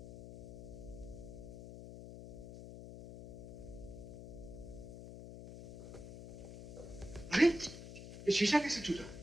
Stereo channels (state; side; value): noise; left; hum, 11 dB below the sound